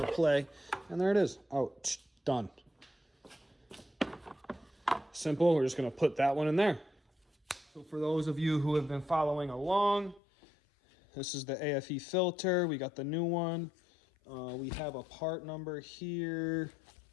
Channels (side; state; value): right; drops out; at 10.2 s